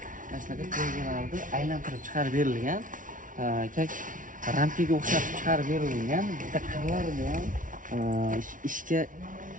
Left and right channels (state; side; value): late; left; 0.38 ms